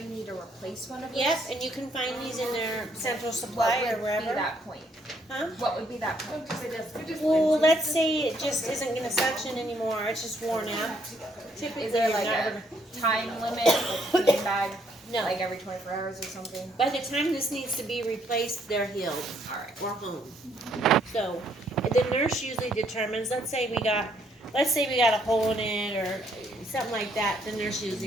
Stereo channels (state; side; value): normal; both; correlation 0.70